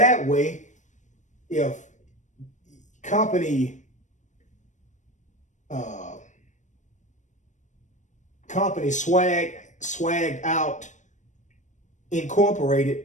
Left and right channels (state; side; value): late; right; 0.35 ms